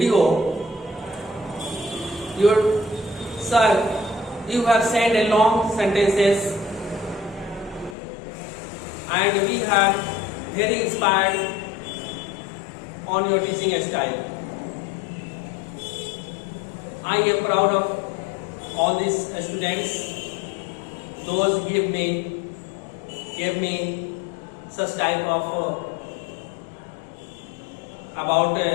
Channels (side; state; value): right; drops out; at 8.0 s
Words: Your sir, you have sent a long sentences and we have very inspired on your teaching style. I am proud of all these students. Those gave me such type of about